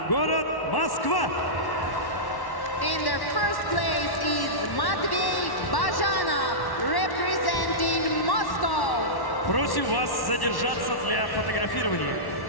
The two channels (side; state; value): right; late; 1.1 ms